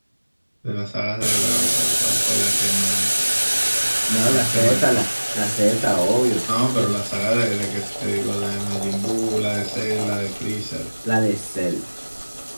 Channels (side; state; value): both; inverted; correlation -1.00